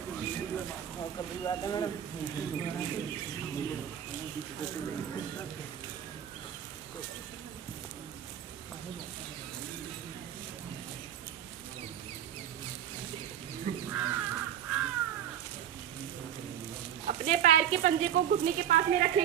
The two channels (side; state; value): left; quieter; 10.0 dB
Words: अपने पैर के पंजे को घुटने के पास में